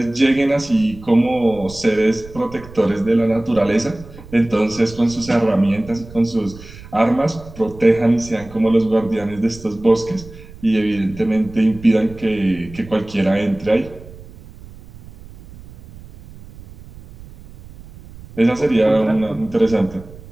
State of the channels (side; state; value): right; noise; rumble, 18 dB below the sound